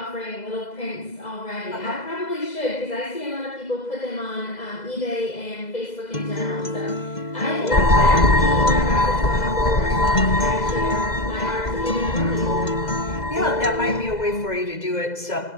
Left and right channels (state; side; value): late; right; 2.0 ms